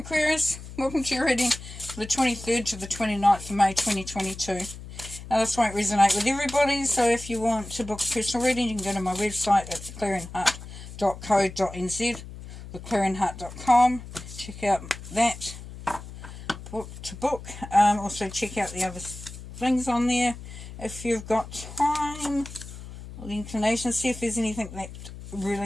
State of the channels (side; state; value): left; noise; hum, 13 dB below the sound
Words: welcome to your reading for the 23rd to the 29th of May 2022. Now this won't resonate with everybody, so if you want to book a personal reading you can go to my website at theclearingheart.co.nz or theclearingheart.com. Check out that book to book. Also check out the other things on there if you've got time or the inclination. See if there's anything that